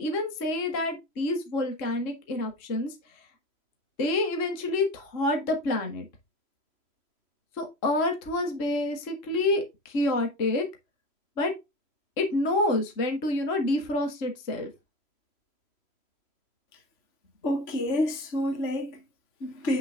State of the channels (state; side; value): late; right; 3.0 ms